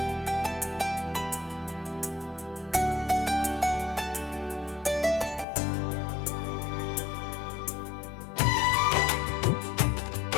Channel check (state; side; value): drops out; right; at 5.5 s